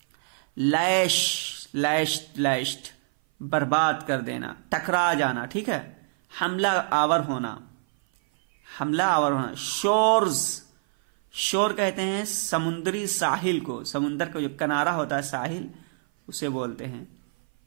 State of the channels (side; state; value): left; silent; 57 dB below the other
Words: लैश्ड बर्बाद कर देना, टकरा जाना, ठीक है, हमला आवर होना। शोर्स, शोर कहते हैं समुद्री साहिल को, समुद्र का जो किनारा होता है साहिल, उसे बोलते हैं